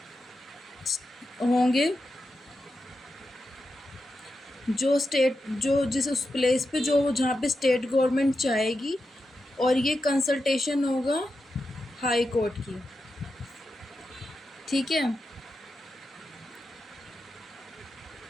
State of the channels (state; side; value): normal; both; correlation 0.89